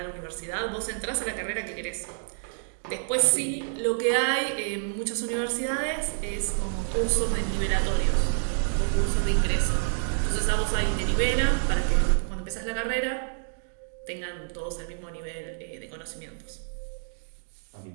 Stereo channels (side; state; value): left; silent; digital silence